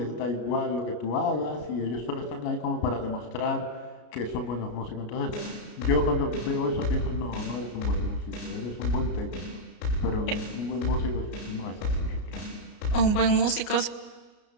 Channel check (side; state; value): right; late; 33 ms